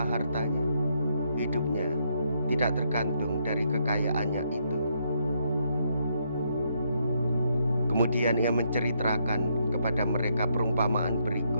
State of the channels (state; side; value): inverted; both; correlation -0.75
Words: hartanya, hidupnya tidak tergantung dari kekayaannya itu." Kemudian ia menceritakan kepada mereka perumpamaan